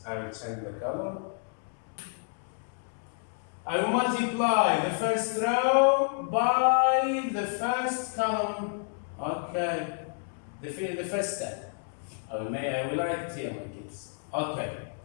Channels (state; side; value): silent; right; 58 dB below the other